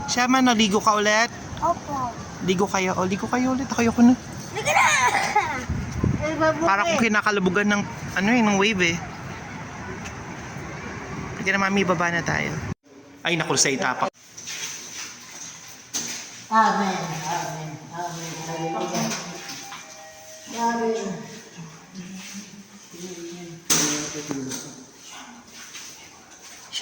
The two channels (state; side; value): identical; both; correlation 1.00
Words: Siya man, ligo ka ulit. Opo. Ligo kayo. O, ligo kayo ulit. Ako na. Sige na! Para kung kinakalabugan ng, ano eh, ng wave eh. Sige na, mami, baba na tayo. Ay, naku, sa itapak. Amen. Amen. Amen. Hallelujah. Amen.